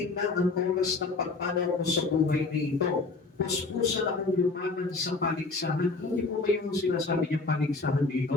na ang oras ng pagpanaw mo sa buhay na ito. Puspusan akong lumaban sa paligsahan. Hindi po ba yung sinasabi niyang paligsahan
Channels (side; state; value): right; quieter; 3.8 dB